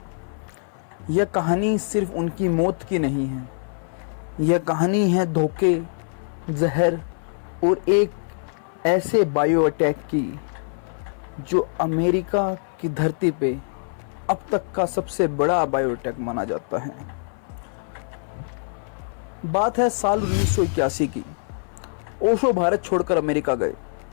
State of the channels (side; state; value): right; silent; 59 dB below the other